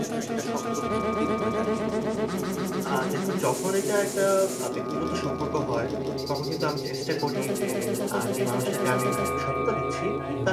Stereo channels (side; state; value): both; identical; correlation 1.00